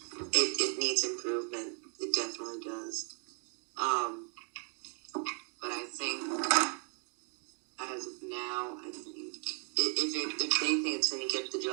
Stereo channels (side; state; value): left; quieter; 39.8 dB